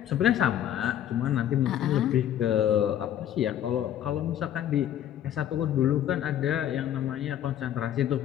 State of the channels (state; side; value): quieter; right; 10.8 dB